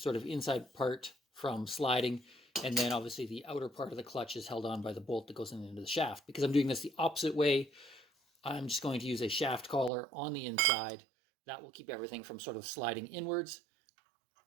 of inside part from sliding, and then obviously the outer part of the clutch is held on by the bolt that goes into the shaft. Because I'm doing this the opposite way, I'm just going to use a shaft collar on the inside. That will keep everything from sort of sliding inwards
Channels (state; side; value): drops out; left; at 9.9 s